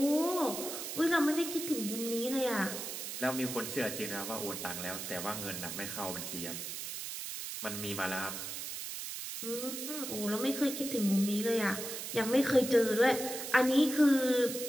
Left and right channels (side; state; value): right; noise; hiss, 6 dB below the sound